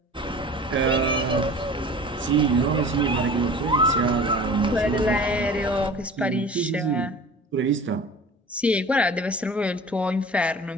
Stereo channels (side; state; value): both; normal; correlation 0.41